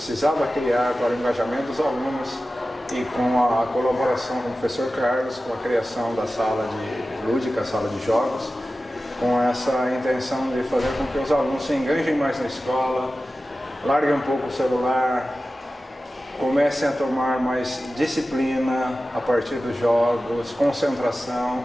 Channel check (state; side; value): normal; both; correlation 0.95